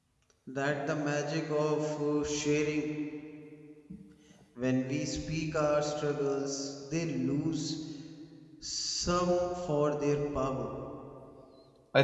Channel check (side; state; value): both; identical; correlation 1.00